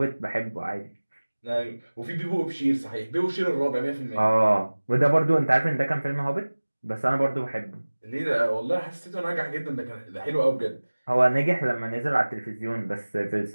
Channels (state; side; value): inverted; both; correlation -1.00